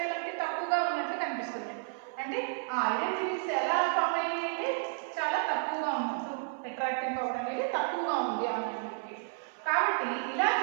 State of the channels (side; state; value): left; silent; 57 dB below the other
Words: మనకి, తక్కువగా ఉన్నట్లు కనిపిస్తుంది. అంటే ఆ ఐరన్ ఫిలింగ్స్ ఎలా ఫామ్ అయ్యాయి అంటే చాలా తక్కువగా ఉన్నట్టు, అట్రాక్టింగ్ పవర్ అనేది తక్కువగా ఉంది ఆ మ్యాగ్నెట్కి. కాబట్టి ఇలా